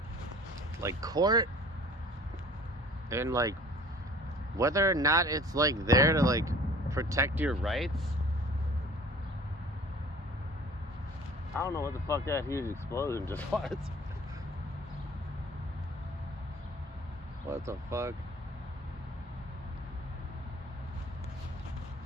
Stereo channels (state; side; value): normal; both; correlation 0.48